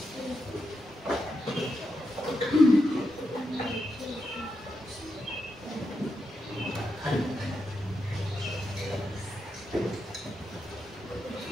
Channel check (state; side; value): normal; both; correlation 0.85